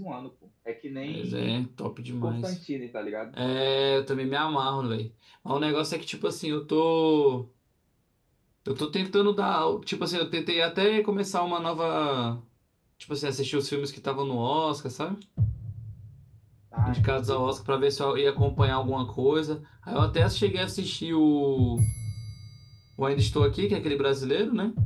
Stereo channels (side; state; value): both; identical; correlation 1.00